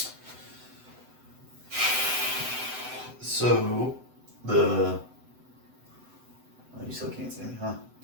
So the you still can't see me, huh?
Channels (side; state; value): left; late; 7.9 ms